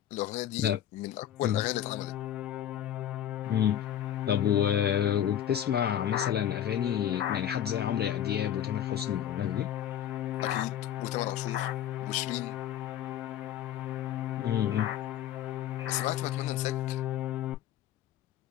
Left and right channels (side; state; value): right; quieter; 10.8 dB